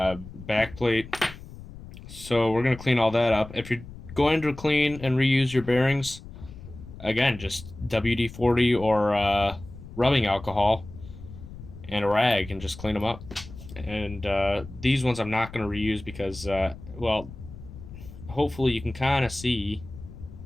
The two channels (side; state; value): left; noise; rumble, 15 dB below the sound